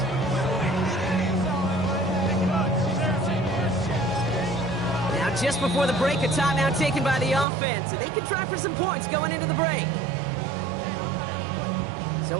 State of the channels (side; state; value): left; drops out; at 7.5 s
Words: Now just before the break, a timeout taken by the offense. And they could try for some points going into the break.